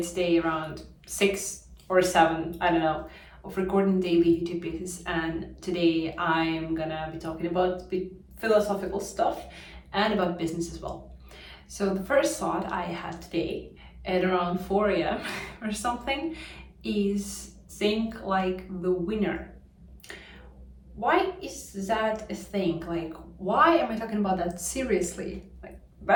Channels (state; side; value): identical; both; correlation 1.00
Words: day around 6 or 7, I don't know, of recording daily YouTube videos, and today I'm gonna be talking about philosophical stuff and about business as well. So the first thought I had today at around 4 a.m. or something is think like the winner. Why is that a thing? Like, why am I talking about that seriously?